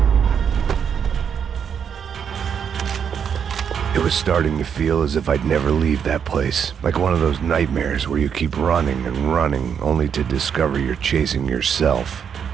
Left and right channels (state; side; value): quieter; left; 7.6 dB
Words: It was starting to feel as if I'd never leave that place. Like one of those nightmares where you keep running and running, only to discover you're chasing yourself.